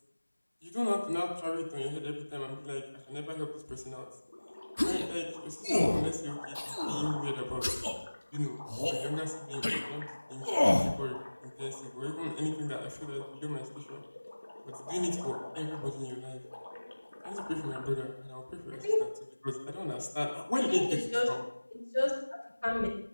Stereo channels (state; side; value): inverted; both; correlation -1.00